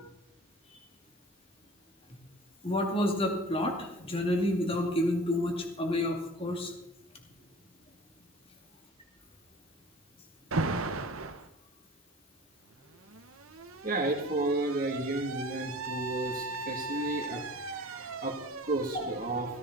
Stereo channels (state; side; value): normal; both; correlation 0.43